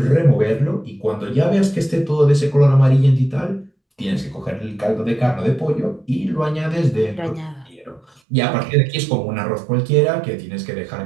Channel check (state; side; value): drops out; left; at 8.2 s